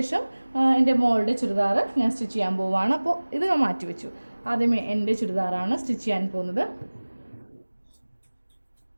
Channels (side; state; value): both; inverted; correlation -1.00